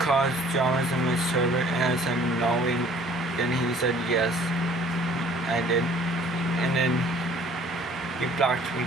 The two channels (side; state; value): both; normal; correlation 0.54